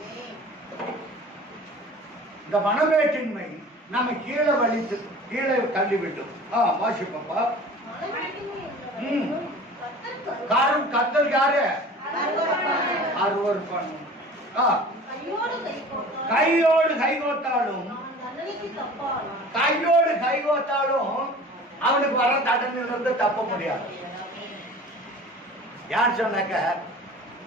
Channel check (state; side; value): normal; both; correlation 0.42